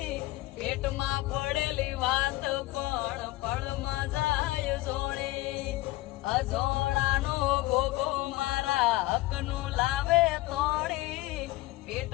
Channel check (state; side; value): quieter; right; 18.7 dB